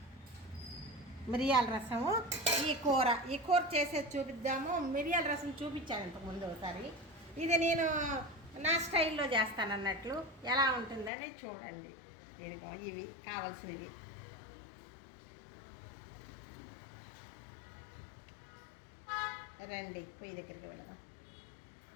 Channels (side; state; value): right; drops out; at 11.1 s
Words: రసము. ఈ కూర చేసేది చూపిద్దాము. మిరియాల రసం చూపించాను ఇంతకుముందు ఒకసారి. ఇది నేను నా స్టైల్లో చేస్తాను అన్నట్లు. ఎలా ఉంటుందని చూడండి. ఇదిగో ఇవి కావాల్సినవి. రండి, పొయ్యి దగ్గరికి వెళదాం.